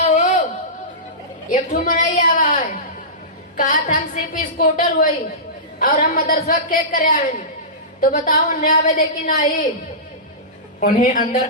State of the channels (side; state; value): both; normal; correlation -0.20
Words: हो एक ठू मनाई आवा है, कहा था हम सीपी स्कूटर हुई और हम मदरसा के करे आए, तो बताओ उन्हें आवे दे कि नहीं। उन्हें अंदर